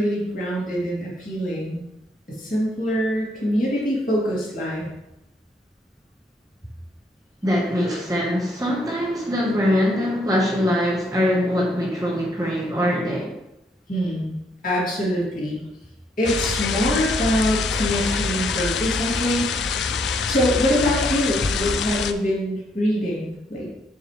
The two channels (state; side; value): normal; both; correlation 0.71